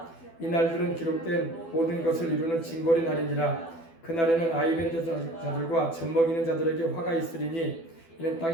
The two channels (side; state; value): right; late; 12 ms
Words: 이 날들은 기록된 모든 것을 이루는 징벌의 날이니라. 그날에는 아이벤 자들과 젖먹이는 자들에게 화가 있으리니 이는